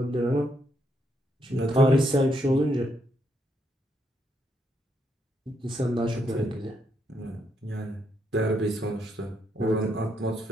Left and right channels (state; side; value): normal; both; correlation 0.77